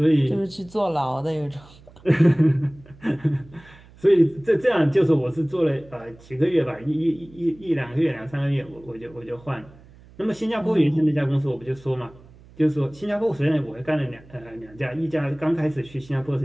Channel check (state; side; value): noise; right; hum, 24 dB below the sound